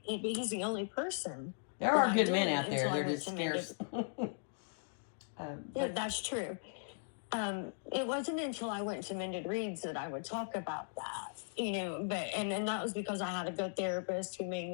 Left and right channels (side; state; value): right; silent; digital silence